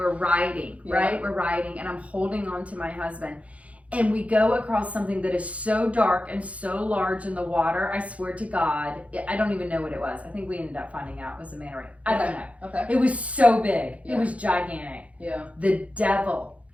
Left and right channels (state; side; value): late; left; 0.065 ms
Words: riding, right? We're riding and I'm holding on to my husband. And we go across something that is so dark and so large in the water. I swear to God, I don't even know what it was. I think we ended up finding out it was a manta ray. I don't know. Okay. It was so big. Yeah. It was gigantic. Yeah. The devil